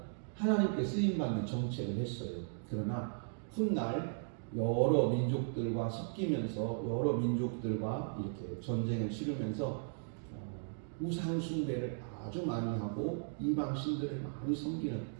하나님께 쓰임받는 정책을 했어요. 그러나 훗날 여러 민족들과 섞이면서 여러 민족들과 이렇게 전쟁을 치르면서 우상 숭배를 아주 많이 하고 이방 신들을 많이 섬기는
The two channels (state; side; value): silent; left; digital silence